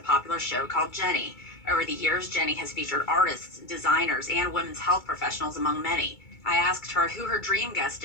show called Jenny. Over the years, Jenny has featured artists, designers, and women's health professionals, among many. I asked her who her dream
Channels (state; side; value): late; right; 2.3 ms